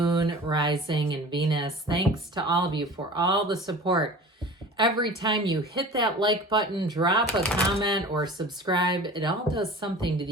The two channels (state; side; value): normal; both; correlation 0.39